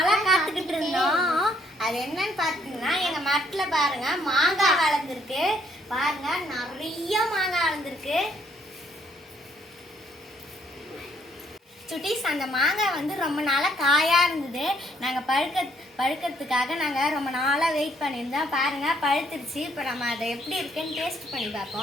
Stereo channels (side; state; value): both; normal; correlation 0.68